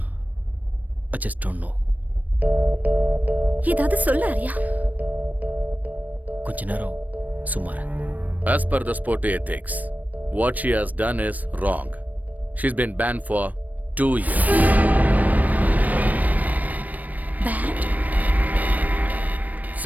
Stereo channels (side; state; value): left; late; 0.078 ms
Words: I just don't know. ஏதாவது சொல்ல ஆரியா. கொஞ்ச நேரம் சும்மா இரு. As per the sport ethics, what she has done is wrong. She's been banned for 2 years. Banned?